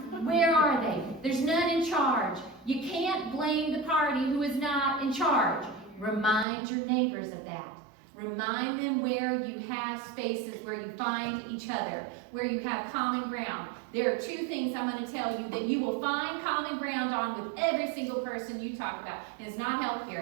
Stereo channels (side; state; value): left; drops out; at 6.5 s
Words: Where are they? There's none in charge. You can't blame the party who is not in charge. Remind your neighbors of that. Remind them where you have spaces where you find each other, where you have common ground. There are two things I'm going to tell you that you will find common ground on with every single person you talk about. And it's not